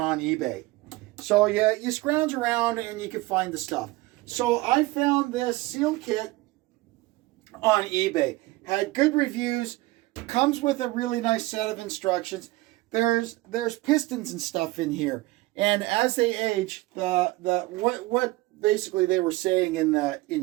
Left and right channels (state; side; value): quieter; left; 20.2 dB